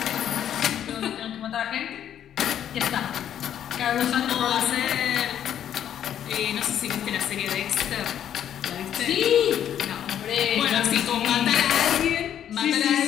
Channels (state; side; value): quieter; right; 10.1 dB